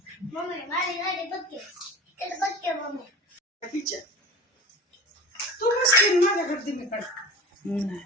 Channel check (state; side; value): normal; both; correlation 0.36